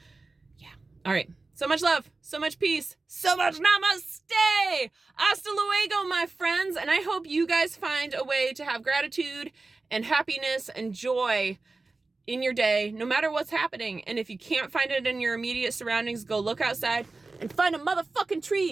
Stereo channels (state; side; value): quieter; left; 3.5 dB